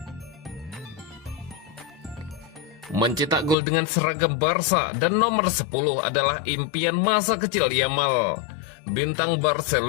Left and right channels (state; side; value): drops out; right; at 3.6 s